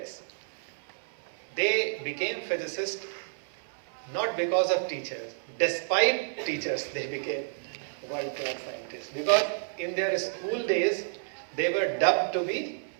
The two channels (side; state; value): left; silent; 58 dB below the other